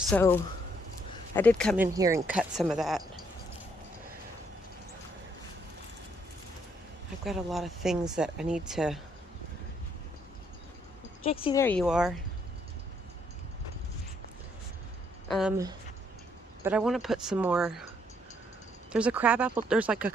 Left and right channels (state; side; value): normal; both; correlation 0.71